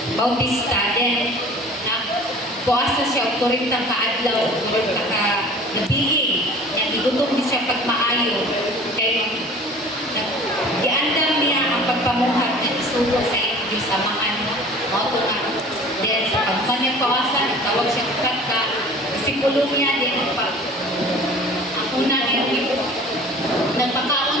Bautista then buwasa siya o 40 kaadlaw o 40 ka nabiging nga gigutom din siya pagmaayo kay giandam niya ang pagpamuhat na isugo sa inyong samahan mo ito nga then sa pagmanya pawasan nagtawag siya ka disipulo niya din ang una niya nagpakaon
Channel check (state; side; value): normal; both; correlation 0.45